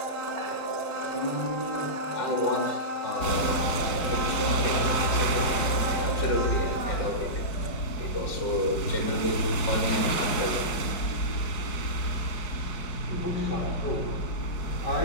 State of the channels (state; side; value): late; right; 4.8 ms